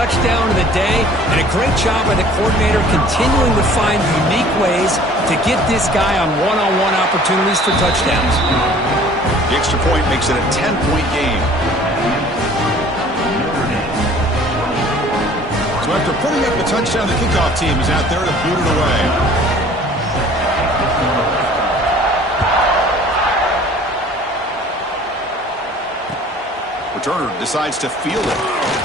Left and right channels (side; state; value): both; normal; correlation 0.51